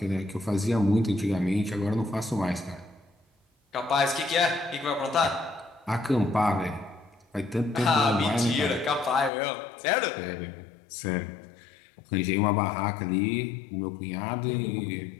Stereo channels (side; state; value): right; drops out; at 9.3 s